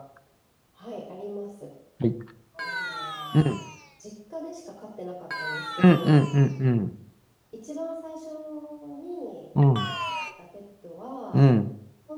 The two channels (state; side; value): identical; both; correlation 1.00